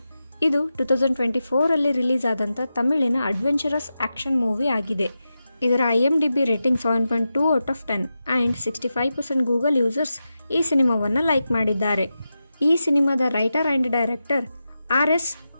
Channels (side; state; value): both; inverted; correlation -0.90